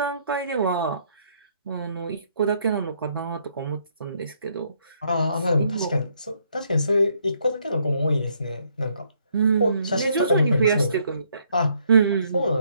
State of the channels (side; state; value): both; inverted; correlation -0.69